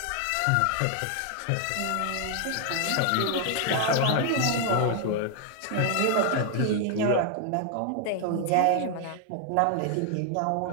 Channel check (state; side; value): different; both; correlation 0.00